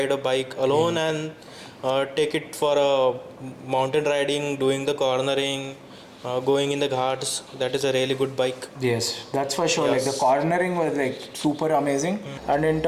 a bike alone and take it for a mountain riding, doing the cornering, going in the ghats. That is a really good bike. Yes, that's for sure. Like the cornering was like super amazing. And in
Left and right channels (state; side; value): identical; both; correlation 1.00